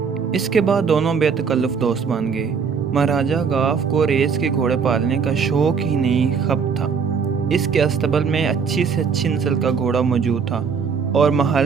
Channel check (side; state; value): left; quieter; 6.1 dB